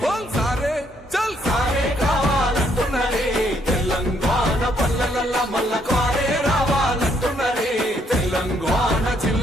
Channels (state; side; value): normal; both; correlation 0.71